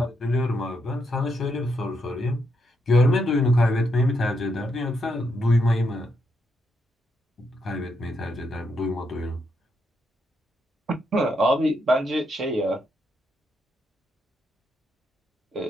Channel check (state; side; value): normal; both; correlation 0.79